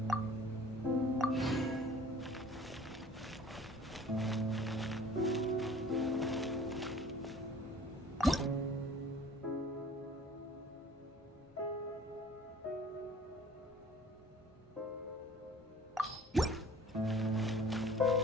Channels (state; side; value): normal; both; correlation 0.49